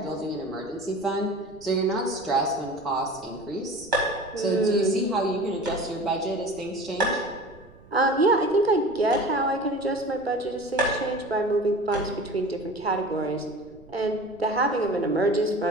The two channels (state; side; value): noise; right; rumble, 25 dB below the sound